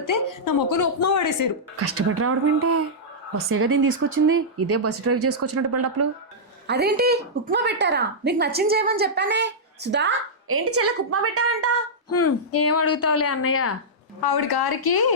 నా మొక్కను ఉప్మా పడేసారు. కష్టపడి రావడం ఏంటే, బస్సేగా దీన్ని తీసుకొచ్చింది. ఇదే బస్సు డ్రైవ్ చేసుకొచ్చినట్టు బిల్డప్లు. అదేంటి ఉప్మా పెట్టారా? నీకు నచ్చింది చేయమని చెప్పానే. సుధా, ఏంటి చెల్లెకు ఉప్మా పెట్టానంట? ఏం అడుగుతావులే అన్నయ్య, ఆవిడ గారికి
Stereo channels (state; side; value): normal; both; correlation -0.11